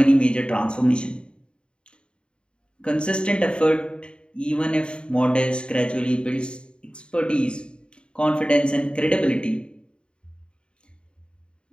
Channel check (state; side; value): late; right; 0.052 ms